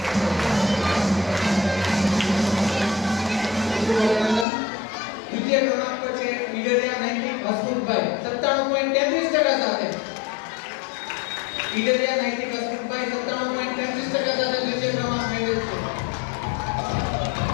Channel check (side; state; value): right; drops out; at 4.5 s